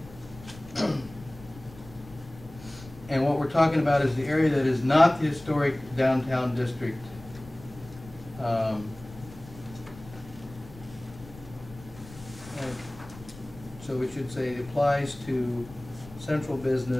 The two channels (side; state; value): left; noise; rumble, 18 dB below the sound